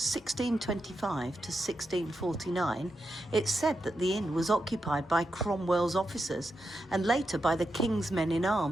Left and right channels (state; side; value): normal; both; correlation 0.87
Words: to 1649, it's said that the inn was occupied by Cromwell's officers and later by the King's men in